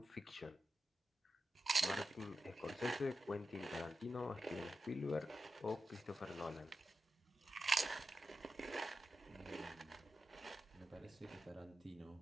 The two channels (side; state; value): both; normal; correlation 0.90